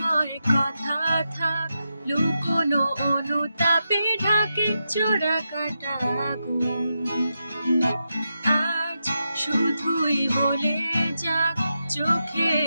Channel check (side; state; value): both; inverted; correlation -0.87